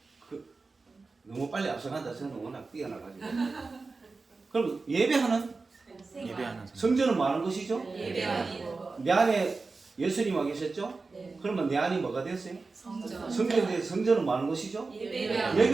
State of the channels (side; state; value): left; quieter; 4.0 dB